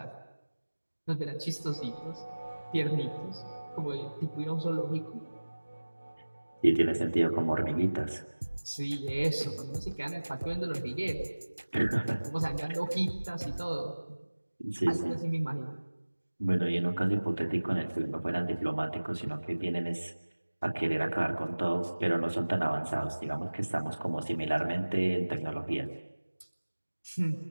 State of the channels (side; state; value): both; inverted; correlation -1.00